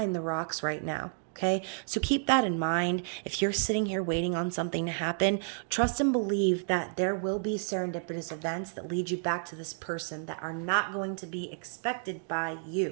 the rocks right now. Okay, so keep that in mind. If you're sitting here waiting on something to happen, trust and believe that there will be serendipitous events that lead you back to this person that are not going to be expected by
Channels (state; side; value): silent; left; digital silence